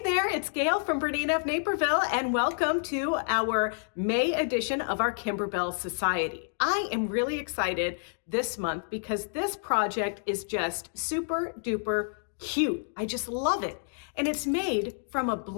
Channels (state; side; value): silent; right; digital silence